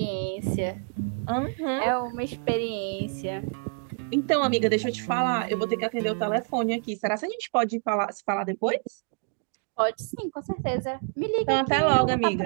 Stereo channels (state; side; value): quieter; left; 38.8 dB